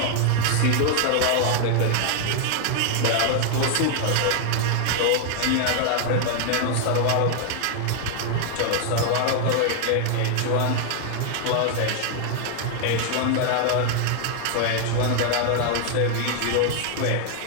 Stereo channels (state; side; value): different; both; correlation 0.00